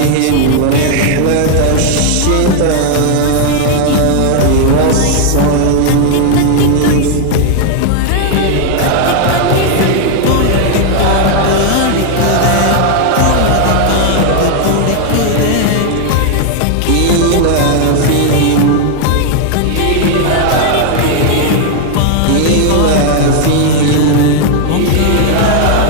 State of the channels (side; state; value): both; different; correlation 0.00